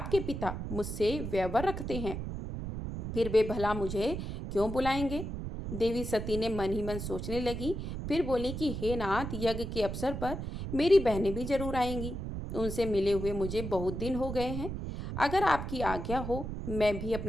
पिता मुझसे व्यवहार रखते हैं, फिर वे भला मुझे क्यों बुलाएंगे? देवी सती ने मन ही मन सोचने लगी, फिर बोली कि हे नाथ, यज्ञ के अवसर पर मेरी बहनें भी जरूर आएंगी। उनसे मिले हुए मुझे बहुत दिन हो गए हैं। अगर आपकी आज्ञा हो, मैं भी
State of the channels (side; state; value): right; noise; rumble, 5 dB below the sound